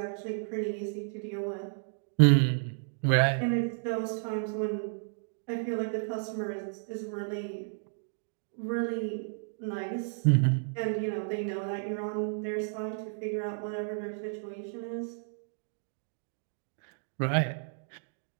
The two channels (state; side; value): silent; left; digital silence